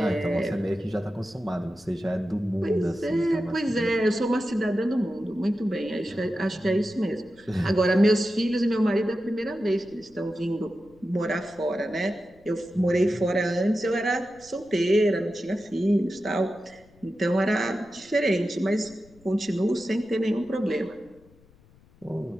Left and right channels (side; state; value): left; noise; rumble, 28 dB below the sound